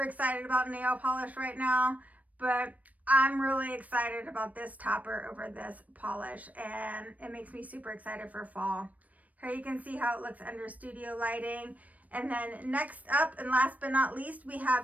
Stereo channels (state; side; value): late; left; 0.071 ms